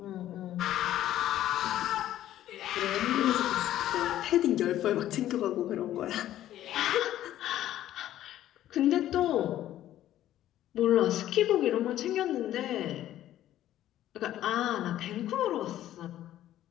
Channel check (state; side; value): quieter; right; 12.8 dB